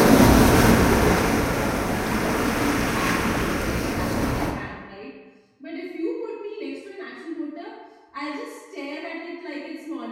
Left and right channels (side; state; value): both; identical; correlation 1.00